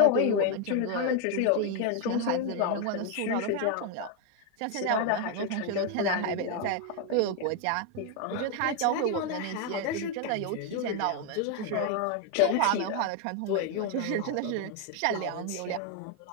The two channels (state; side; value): different; both; correlation 0.01